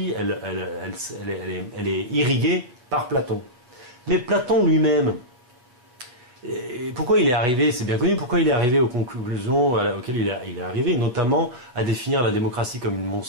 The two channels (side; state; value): left; late; 8.2 ms